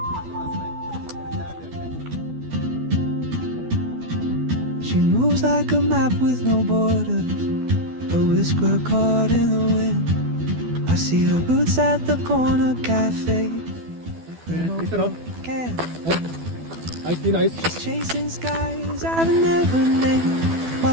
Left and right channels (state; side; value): late; left; 12 ms